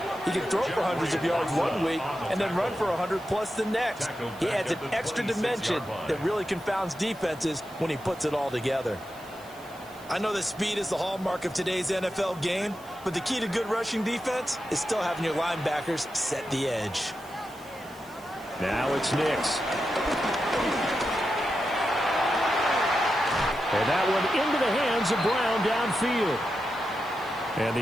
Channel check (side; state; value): right; noise; hiss, 23 dB below the sound